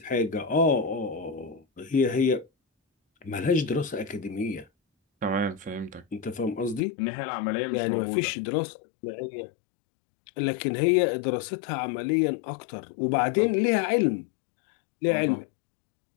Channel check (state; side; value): drops out; right; at 6.8 s